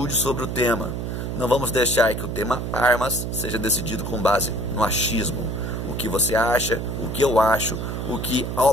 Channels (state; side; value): noise; right; hum, 4 dB below the sound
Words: sobre o tema. Não vamos deixar que o tema armas seja decidido com base no achismo. O que você acha, o que eu acho, o que